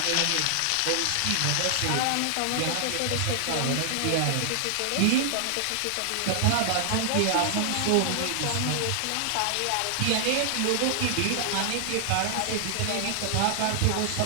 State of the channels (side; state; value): both; different; correlation 0.00